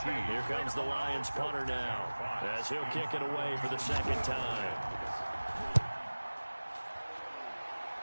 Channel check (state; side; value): inverted; both; correlation -1.00